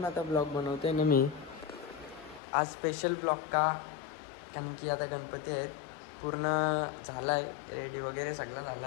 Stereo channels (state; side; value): drops out; right; at 2.4 s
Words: आता ब्लॉग बनवते ना मी. आज स्पेशल ब्लॉग का, कारण की आता गणपती आहेत. पूर्ण झाला आहे, रेडी वगैरे सगळं